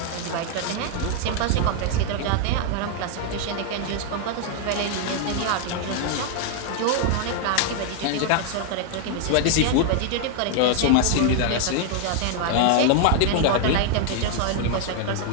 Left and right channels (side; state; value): both; different; correlation 0.00